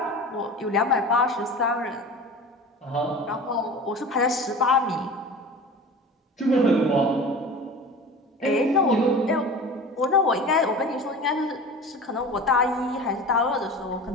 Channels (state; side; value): normal; both; correlation 0.36